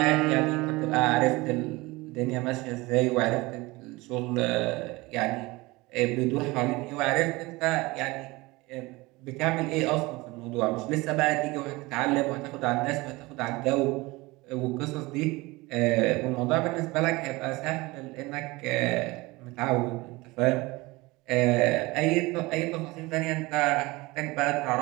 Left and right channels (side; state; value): left; quieter; 22.3 dB